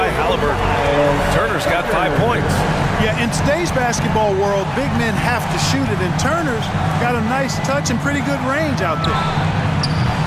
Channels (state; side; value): identical; both; correlation 1.00